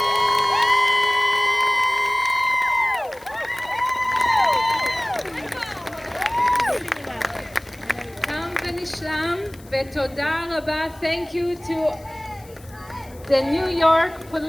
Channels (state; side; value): noise; left; hiss, 24 dB below the sound